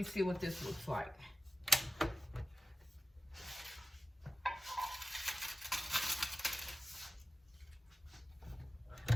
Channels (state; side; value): normal; both; correlation 0.94